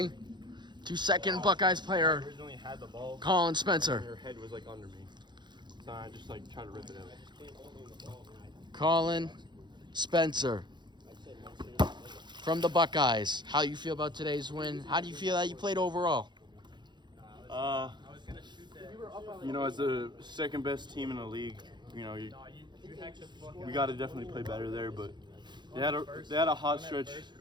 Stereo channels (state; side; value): late; left; 0.21 ms